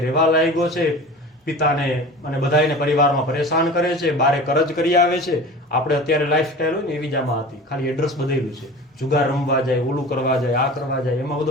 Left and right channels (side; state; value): both; normal; correlation 0.37